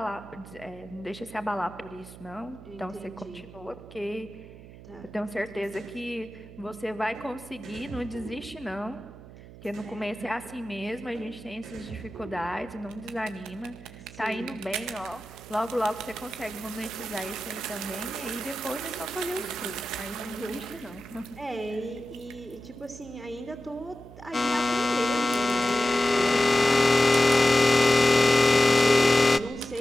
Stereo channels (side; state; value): right; noise; hum, 17 dB below the sound